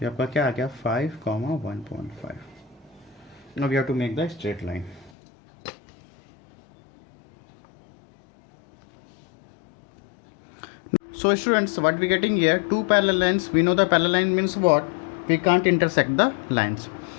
आपका क्या आ गया 5, 1.5। Now we have to make the straight line. So students, what we getting here, two parallel lines, we know the parallel line means what, we can't intersect the lines.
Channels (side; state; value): right; drops out; at 5.1 s